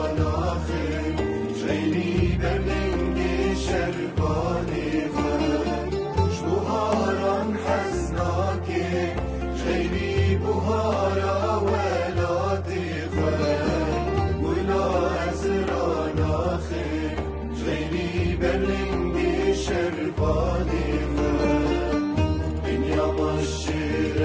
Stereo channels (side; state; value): both; identical; correlation 1.00